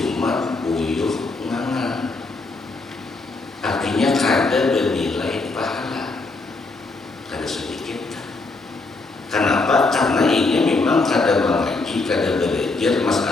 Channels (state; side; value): quieter; right; 3.5 dB